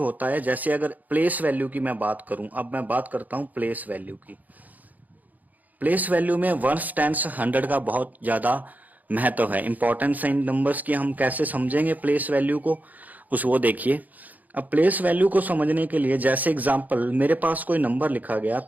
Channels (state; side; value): late; left; 0.080 ms